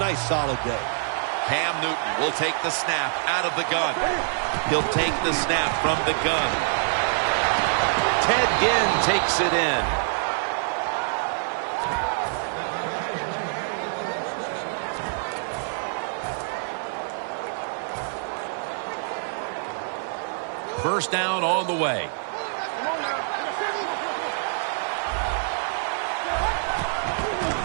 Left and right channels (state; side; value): silent; left; 61 dB below the other